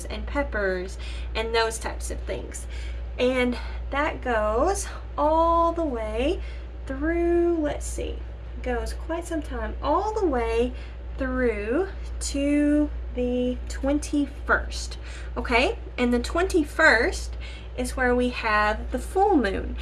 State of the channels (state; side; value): identical; both; correlation 1.00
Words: and peppers and those types of things. And that goes all the way through, let's see, goes quite some time, all the way through to the 21st. Okay, and the 21st is where we have the full moon,